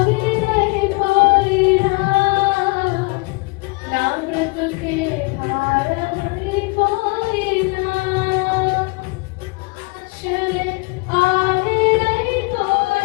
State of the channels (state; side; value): quieter; right; 27.4 dB